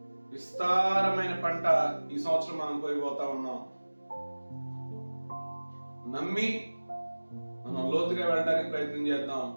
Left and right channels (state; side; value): inverted; both; correlation -1.00